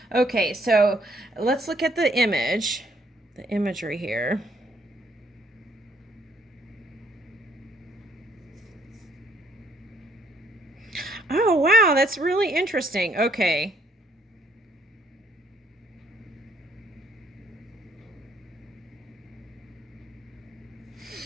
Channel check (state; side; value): normal; both; correlation 0.67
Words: Okay, so let's look at the imagery here. Oh, wow, that's really interesting. Okay.